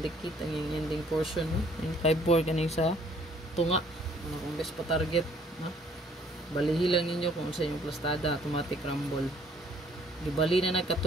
ang yung ending portion. No? 954 kanay sa tunga. Ano kung best pa target. No? Balihi lang ninyo kung sa inyong plastada, automatic rumble. Gibali na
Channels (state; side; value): normal; both; correlation 0.60